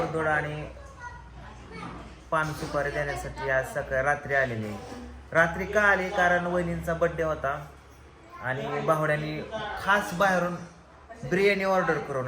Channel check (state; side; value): identical; both; correlation 1.00